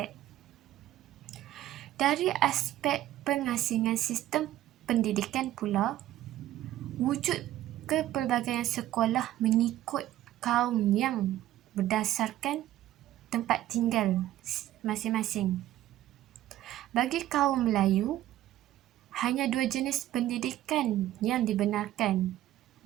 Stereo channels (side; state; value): left; quieter; 13.8 dB